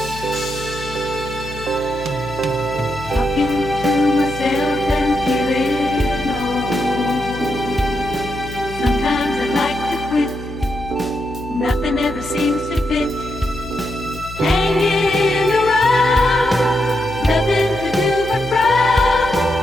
to myself and feeling old. Sometimes I like to quit. Nothing ever seems to fit. Hanging around, nothing to do but frown.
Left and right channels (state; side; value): noise; left; hum, 13 dB below the sound